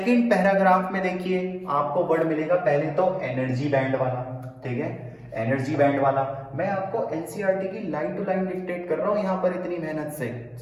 पैराग्राफ में देखिए, आपको वर्ड मिलेगा पहले तो एनर्जी बैंड वाला। ठीक है, एनर्जी बैंड वाला। मैं आपको एनसीईआरटी की लाइन टू लाइन डिक्टेट कर रहा हूं यहां पर इतनी मेहनत से,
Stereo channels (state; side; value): identical; both; correlation 1.00